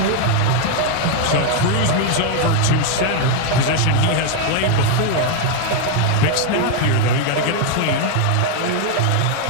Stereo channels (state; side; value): different; both; correlation 0.01